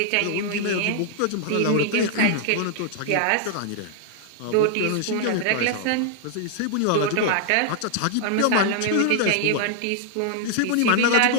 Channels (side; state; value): both; different; correlation -0.01